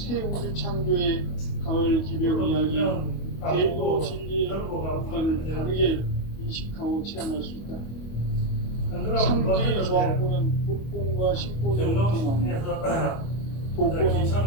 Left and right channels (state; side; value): late; right; 25 ms